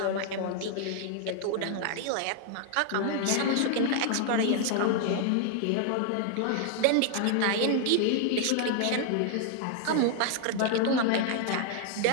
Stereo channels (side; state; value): both; different; correlation 0.00